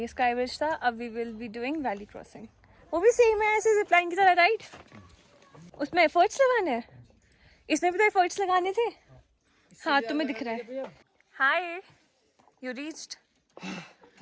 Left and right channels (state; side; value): identical; both; correlation 1.00